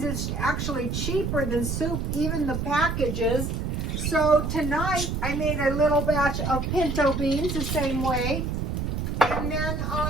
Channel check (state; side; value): noise; right; rumble, 2 dB below the sound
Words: it's actually cheaper than soup, even the packages. So tonight I made a little batch of pinto beans the same way. And then